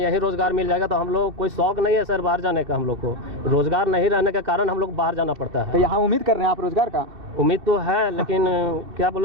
रोजगार मिल जाएगा तो हम लोग कोई शौक नहीं है सर बाहर जाने का। हम लोग को रोजगार नहीं रहने के कारण हम लोग बाहर जाना पड़ता है। तो यहाँ उम्मीद कर रहे हैं आप रोजगार का? उम्मीद तो है, लेकिन क्या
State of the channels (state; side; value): late; left; 2.6 ms